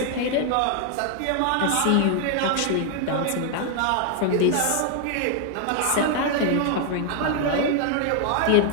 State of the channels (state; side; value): different; both; correlation 0.00